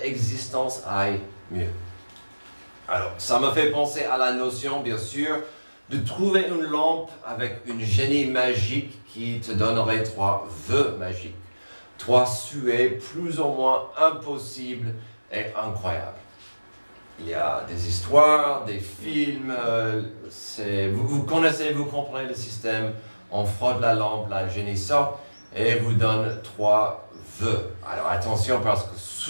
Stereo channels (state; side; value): inverted; both; correlation -1.00